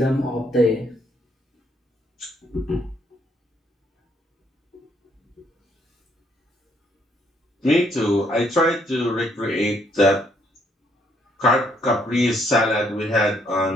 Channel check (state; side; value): normal; both; correlation 0.70